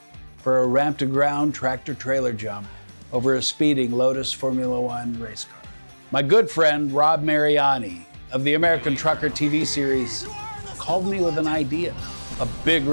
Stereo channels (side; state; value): both; inverted; correlation -1.00